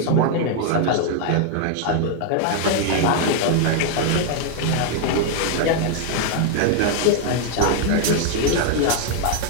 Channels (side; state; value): both; different; correlation 0.00